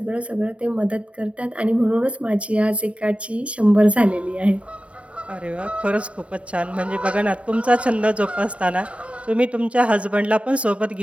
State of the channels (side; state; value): left; late; 0.063 ms